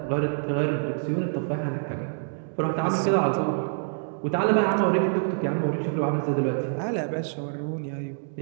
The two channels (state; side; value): silent; left; digital silence